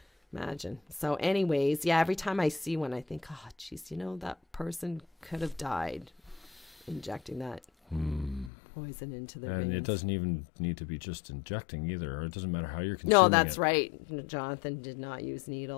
Imagine. So anyways, every time I see one, I think, oh, geez, that person could have died injecting that poison into their veins. And it doesn't even need to be just injecting either. Or it doesn't matter how you're consuming No, that's right. Johnathan did not use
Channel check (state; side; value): drops out; right; at 8.5 s